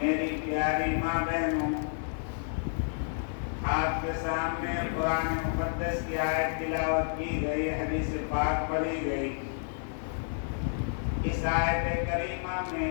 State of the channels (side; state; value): right; silent; 58 dB below the other